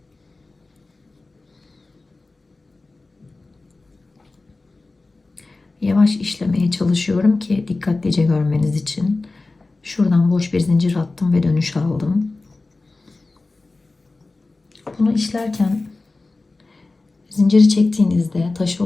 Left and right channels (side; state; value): right; quieter; 3.4 dB